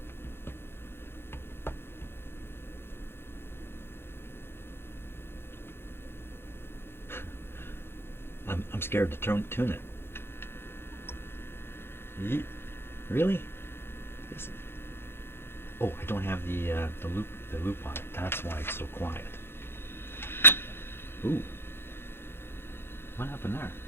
I'm scared to tune it. Really? Oh, I don't have the loop on it. That's why it's so quiet. Ooh. What happened there?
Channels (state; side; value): late; right; 0.11 ms